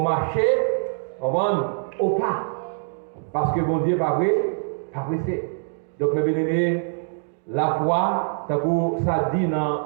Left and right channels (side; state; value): left; silent; digital silence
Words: au pas. Parce que bon Dieu n'est pas pressé. Donc, mes bien-aimés, la foi, ça dit